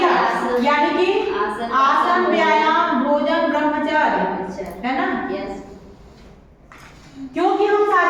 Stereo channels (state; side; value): identical; both; correlation 1.00